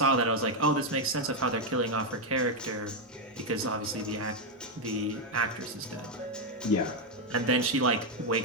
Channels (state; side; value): normal; both; correlation 0.04